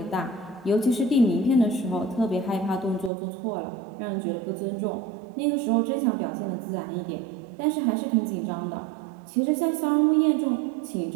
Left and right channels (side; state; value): left; drops out; at 3.1 s